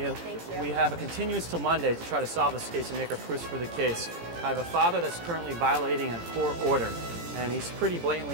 Thank you. We have a continuance till Monday to try to solve this case and make our proofs for the case. I have a father that's currently violating a court order, and he's pretty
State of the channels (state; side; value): late; left; 17 ms